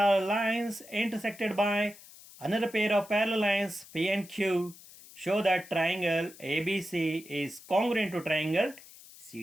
lines intersected by another pair of parallel lines P and Q. Show that triangle ABC is congruent to triangle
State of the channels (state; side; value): noise; left; hiss, 20 dB below the sound